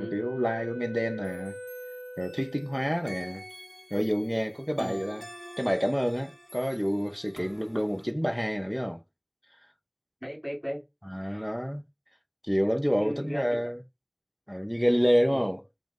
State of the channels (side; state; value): both; identical; correlation 1.00